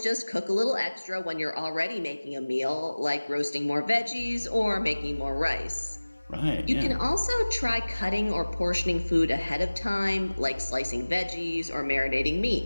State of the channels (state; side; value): inverted; both; correlation -1.00